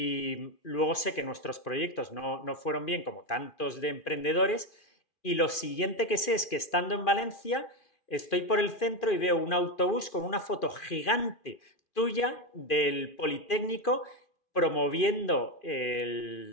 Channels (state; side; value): late; right; 2.4 ms